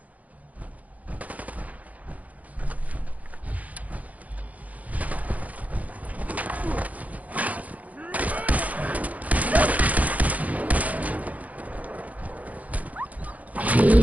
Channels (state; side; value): late; left; 0.074 ms